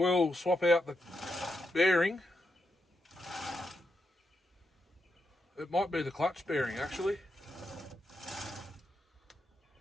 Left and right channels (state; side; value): normal; both; correlation 0.84